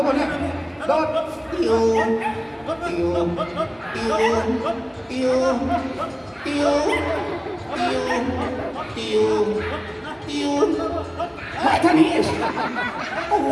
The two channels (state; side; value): identical; both; correlation 1.00